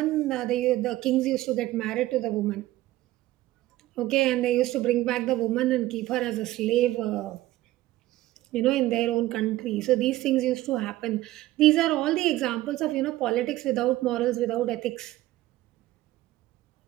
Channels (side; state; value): left; quieter; 16.3 dB